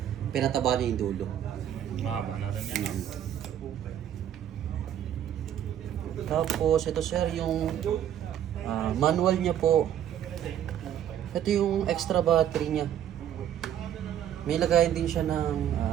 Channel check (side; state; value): left; quieter; 10.4 dB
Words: Pinataba niya yung dulo. Mahaba na rin yan. Tapos ito sir, yung manual niya po. Ito yung extra battery niya. May lagayan din siya ng